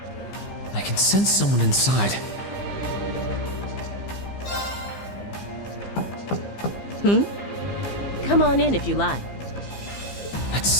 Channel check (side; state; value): right; late; 15 ms